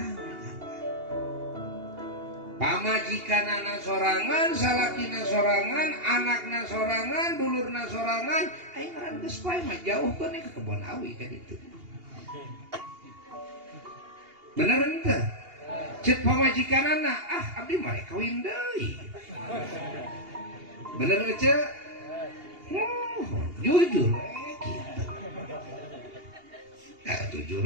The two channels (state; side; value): late; left; 2.8 ms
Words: Pamajikanana sorangan, salakina sorangan, anakna sorangan, dulurna sorangan, aing ngaran geus paeh mah jauhkeun ke kebon awi ka ditu. Bener henteu? Ceuk pamajikanana, abdi mah rek kawin deui. Bener ceuk? Jujur kitu.